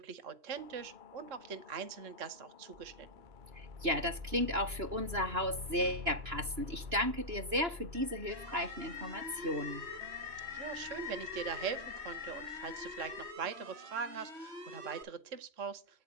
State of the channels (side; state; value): left; late; 2.9 ms